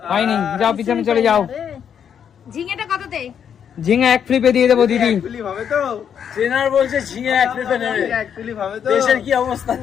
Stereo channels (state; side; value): quieter; right; 8.2 dB